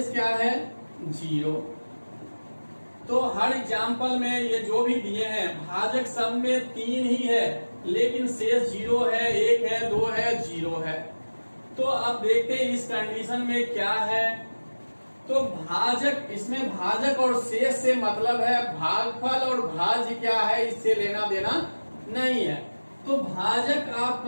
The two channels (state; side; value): inverted; both; correlation -1.00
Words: क्या है, 0। तो हर एग्जाम्पल में ये जो भी दिए हैं भाजक सब में 3 ही है, लेकिन शेष 0 है, 1 है, 2 है, 0 है। तो अब देखते हैं इस कंडीशन में क्या है। तो भाजक, इसमें भाजक और शेष से मतलब है भागफल, और भाज्य क्या है इससे लेना देना नहीं है। तो भाजक